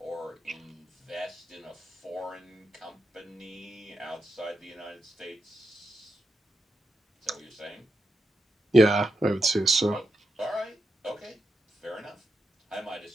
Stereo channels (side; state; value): both; normal; correlation 0.86